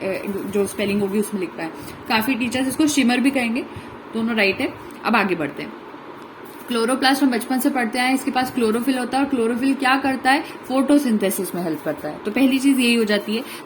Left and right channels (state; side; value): identical; both; correlation 1.00